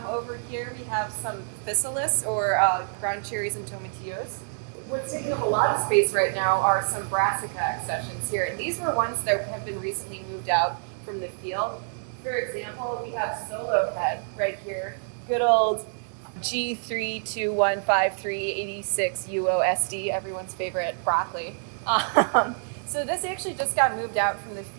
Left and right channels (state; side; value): silent; left; digital silence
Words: over here, we have some physalis or ground cherries and tomatillos. What's taking up a lot of space right now are some brassica accessions here, and these were ones that have been recently moved out from the field. For example, we have solo head right here, good old G3215386 UOSD, everyone's favorite broccoli. So this actually just got moved out from the